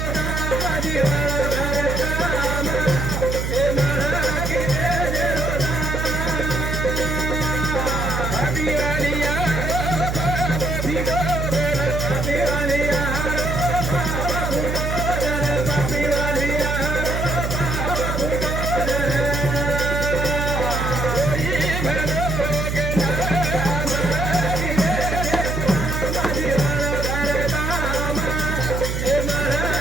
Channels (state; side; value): noise; right; hum, 2 dB below the sound